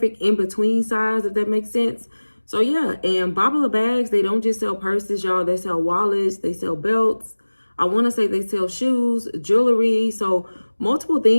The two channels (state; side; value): inverted; both; correlation -1.00